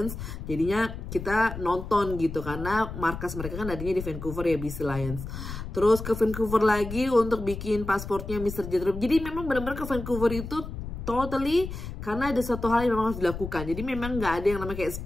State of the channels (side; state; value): left; noise; rumble, 8 dB below the sound